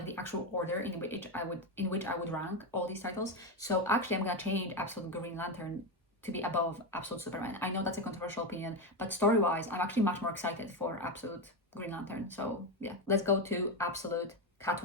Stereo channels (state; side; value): normal; both; correlation 0.11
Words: the actual order in which I would rank all these titles. So actually, I'm gonna change Absolute Green Lantern to be above Absolute Superman. I know that's a controversial opinion, but story-wise, I'm actually much more excited for Absolute Green Lantern. So yeah, let's go to Absolute